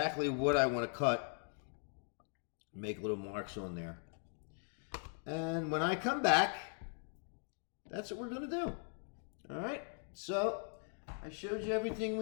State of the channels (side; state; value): right; silent; 51 dB below the other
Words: what I want to cut. Make little marks on there. And when I come back, that's what we're going to do. All right? So, I showed you everything